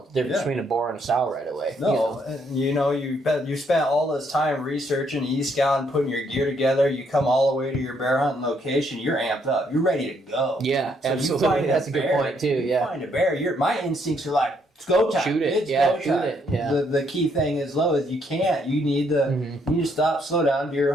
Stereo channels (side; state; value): both; normal; correlation 0.71